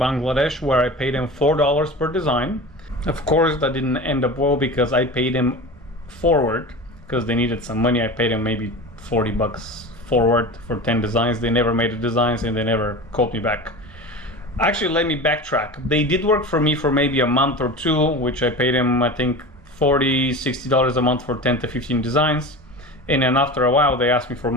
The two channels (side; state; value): both; normal; correlation 0.31